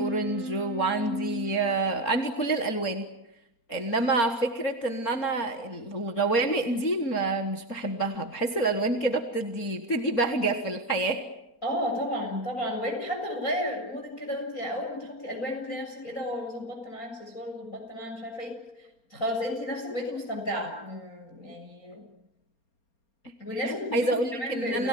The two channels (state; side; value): late; right; 4.3 ms